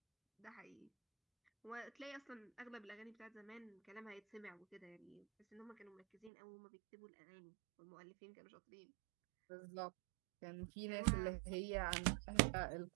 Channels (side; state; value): left; drops out; at 6.3 s